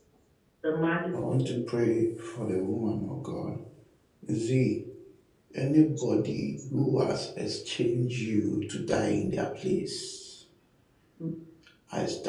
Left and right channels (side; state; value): both; identical; correlation 1.00